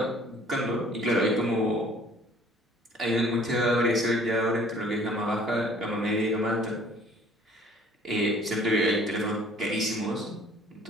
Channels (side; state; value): both; normal; correlation 0.54